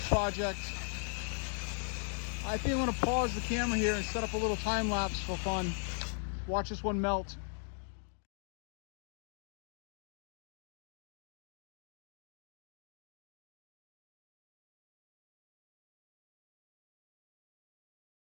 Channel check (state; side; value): silent; right; 51 dB below the other